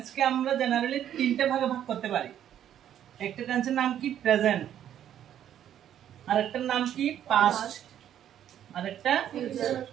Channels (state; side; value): quieter; left; 10.5 dB